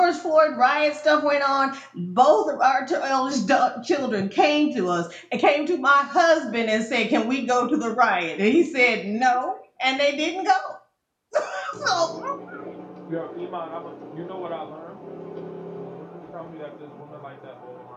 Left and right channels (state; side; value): identical; both; correlation 1.00